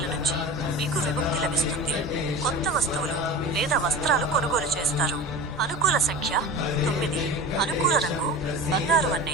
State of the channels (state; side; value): normal; both; correlation 0.32